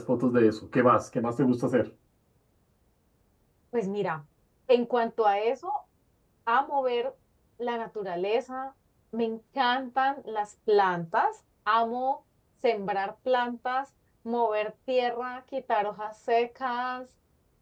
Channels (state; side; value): identical; both; correlation 1.00